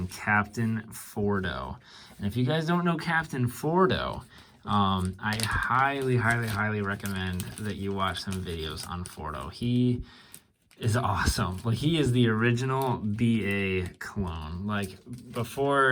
Captain Fordo. And if you guys don't know Captain Fordo, I highly recommend that you watch some videos on Fordo. He is awesome. Like, he is the original BA clone. Like,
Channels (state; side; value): identical; both; correlation 1.00